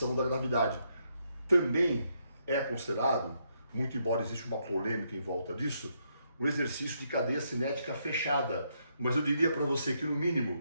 da gravidade. Também é considerado, muito embora exista uma polêmica em volta disso, o exercício de cadeia cinética fechada. Mas eu diria para você que, no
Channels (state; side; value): inverted; both; correlation -0.77